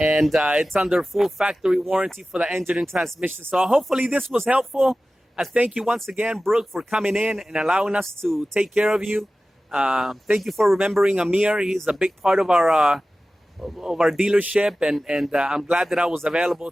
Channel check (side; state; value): both; normal; correlation 0.96